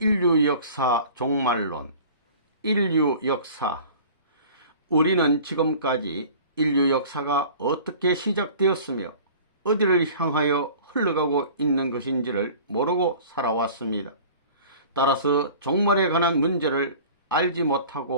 종말론. 인류역사. 우리는 지금까지 인류 역사가 어떻게 시작되었으며 어디를 향하여 흘러가고 있는 것인지를 모르고 살아왔습니다. 따라서 종말에 관한 문제를 알지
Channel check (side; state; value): both; inverted; correlation -0.44